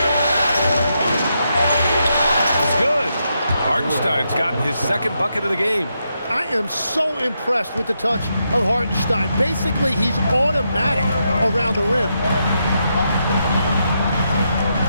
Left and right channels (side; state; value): both; inverted; correlation -0.82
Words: It's good. Hartenstein's gotten his second bucket of the game. I am so impressed with the touch of Hartenstein. Basically, he's automatic around the rim.